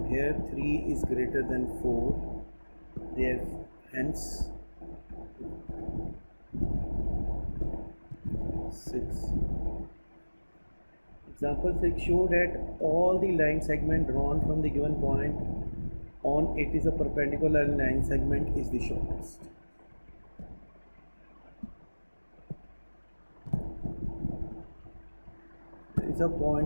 here 3 is greater than 4. Therefore, hence 6. Example 6, show that all the line segment drawn from the given point on it is a perpendicular line segment is the shortest. There is a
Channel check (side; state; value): both; inverted; correlation -1.00